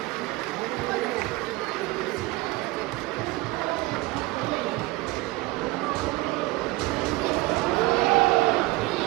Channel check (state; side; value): quieter; left; 21.0 dB